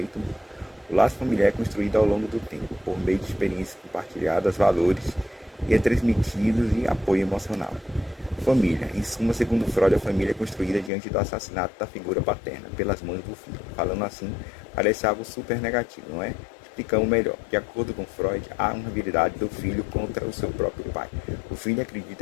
mútuo. O laço familiar é construído ao longo do tempo, por meio de experiências compartilhadas, valores e é transmitidos e apoio emocional. Família. Em suma, segundo Freud, a família é construída diante do assassinato da figura paterna pelas mães do filho. Falando assim, parece algo super negativo, não é? Explicamos melhor. De acordo com Freud, há uma habilidade do filho contra o seu próprio pai. O filho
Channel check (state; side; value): drops out; right; at 10.9 s